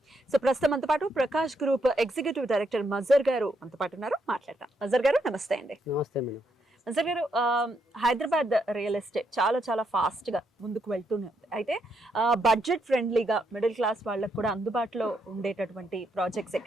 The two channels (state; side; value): normal; both; correlation 0.77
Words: So ప్రస్తుతం మనతో పాటు ప్రకాష్ గ్రూప్ ఎగ్జిక్యూటివ్ డైరెక్టర్ మజర్ గారు మనతో పాటు ఉన్నారు. మాట్లాడతాం. మజర్ గారు నమస్తే అండి. నమస్తే మేడం. మజర్ గారు, హైదరాబాద్ రియల్ ఎస్టేట్ చాలా ఫాస్ట్ గా ముందుకు వెళ్తూనే ఉంది. అయితే బడ్జెట్ ఫ్రెండ్లీగా మిడిల్ క్లాస్ వాళ్ళకి కూడా అందుబాటులో ఉండేటటువంటి ప్రాజెక్ట్స్